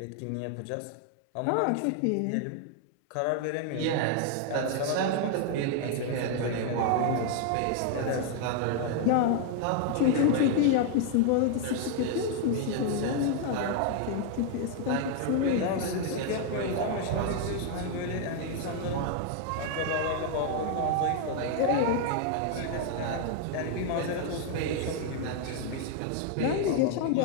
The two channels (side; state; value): both; different; correlation 0.00